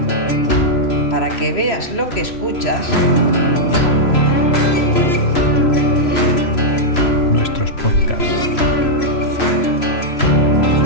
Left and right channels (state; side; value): late; right; 3.0 ms